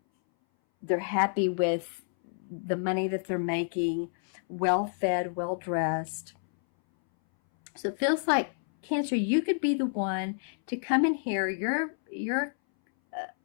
happy with the money that they're making, well-fed, well-dressed. So it feels like, Cancer, you could be the one to come in here. You're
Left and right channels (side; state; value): right; silent; 58 dB below the other